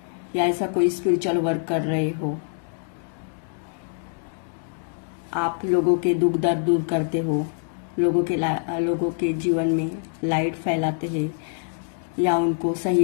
या ऐसा कोई स्पिरिचुअल वर्क कर रहे हो, आप लोगों के दुख दर्द दूर करते हो, लोगों के जीवन में लाइट फैलाते हैं या उनको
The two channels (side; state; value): right; silent; digital silence